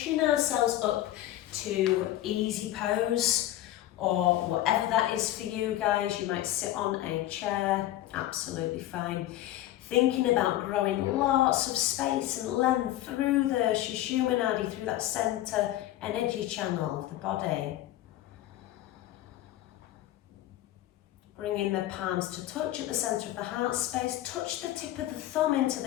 ourselves up to easy pose, or whatever that is for you guys. You might sit on a chair, absolutely fine. Thinking about growing lots of space and length through the Sushumna, through that centre energy channel of the body. Bringing the palms to touch at the centre of the heart space. Touch the tip of the thumb into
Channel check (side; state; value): right; quieter; 14.3 dB